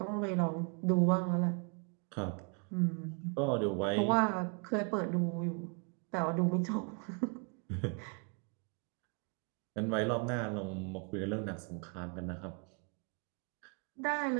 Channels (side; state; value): left; quieter; 36.8 dB